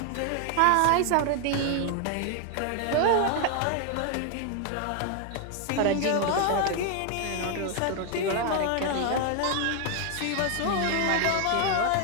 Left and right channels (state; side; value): different; both; correlation 0.01